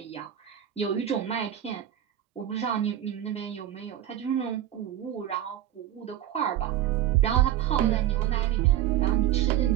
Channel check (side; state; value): left; quieter; 11.7 dB